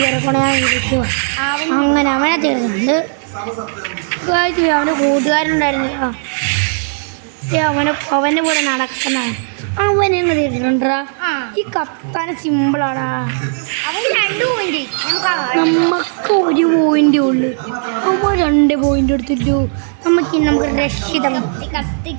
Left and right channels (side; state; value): left; silent; 69 dB below the other